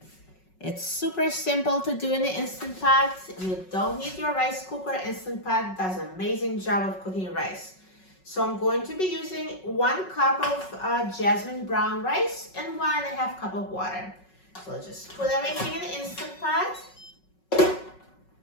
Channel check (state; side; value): late; right; 5.4 ms